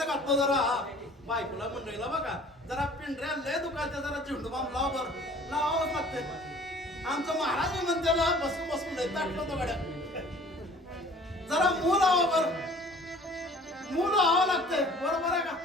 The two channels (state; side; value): normal; both; correlation 0.50